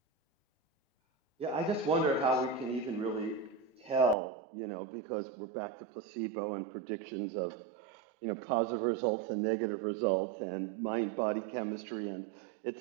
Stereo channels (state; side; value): drops out; left; at 4.2 s